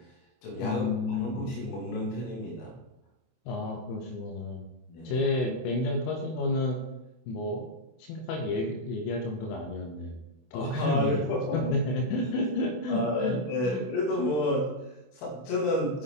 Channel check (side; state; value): right; late; 24 ms